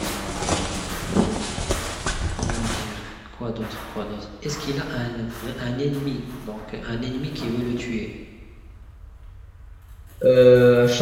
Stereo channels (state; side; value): identical; both; correlation 1.00